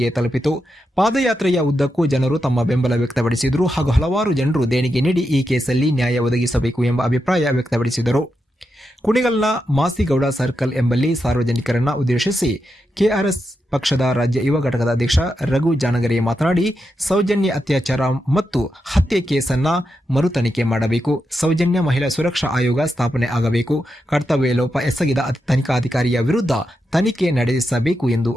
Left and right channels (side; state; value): both; normal; correlation 0.86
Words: ತಲುಪಿತು. ಪಾದಯಾತ್ರೆಯ ಉದ್ದಕ್ಕೂ ಜನರು ತಮ್ಮ ಬೆಂಬಲ ವ್ಯಕ್ತಪಡಿಸಿದರು ಹಾಗೂ ಹಲವಾರು ಜನರು ದೇಣಿಗೆ ನೀಡಿ ಈ ಕೇಸಲ್ಲಿ ನ್ಯಾಯ ಒದಗಿಸಬೇಕು ಎಂಬ ಅಭಿಪ್ರಾಯ ವ್ಯಕ್ತಪಡಿಸಿದರು. ಕುಣಿಗಲ್ನ ಮಾಸಿಗೌಡ ಸರ್ಕಲ್ ಎಂಬಲ್ಲಿ ಸಾರ್ವಜನಿಕರನ್ನ ಉದ್ದೇಶಿಸಿ ಕೆಆರ್ಎಸ್ ಪಕ್ಷದ ರಾಜ್ಯ ಯುವ ಘಟಕದ ಅಧ್ಯಕ್ಷ ರಘು ಜಾನಗರೆ ಮಾತನಾಡಿ, ಸೌಜನ್ಯ ಅತ್ಯಾಚಾರ ಮತ್ತು ಹತ್ಯೆ ಕೇಸನ್ನ ಮರು ತನಿಖೆ ಮಾಡಬೇಕು. ಸೌಜನ್ಯ ಮಹಿಳಾ ಸುರಕ್ಷಾ ಆಯೋಗ ಸ್ಥಾಪನೆ ಆಗಬೇಕು. ಕರ್ತವ್ಯ ಲೋಪ ಎಸಗಿದ ತನಿಖಾಧಿಕಾರಿಯ ವಿರುದ್ಧ ತನಿಖೆ ನಡೆಸಬೇಕು ಎಂದು